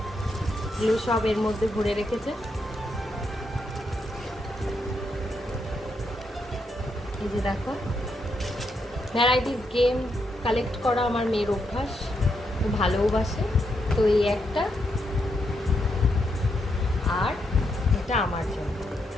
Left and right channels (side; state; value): both; normal; correlation 0.80